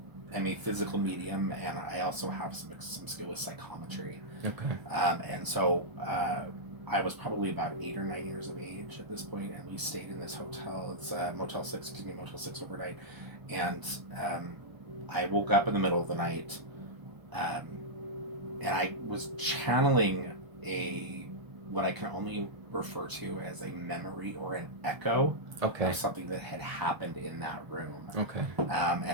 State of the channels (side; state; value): left; late; 1.0 ms